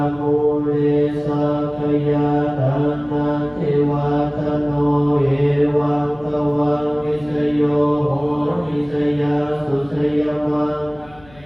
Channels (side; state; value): left; noise; hum, 25 dB below the sound